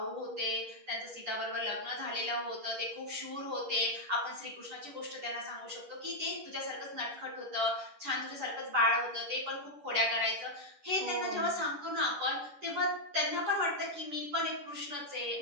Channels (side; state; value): left; late; 10 ms